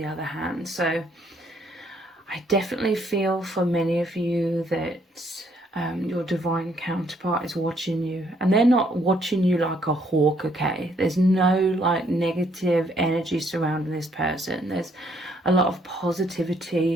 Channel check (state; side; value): normal; both; correlation 0.68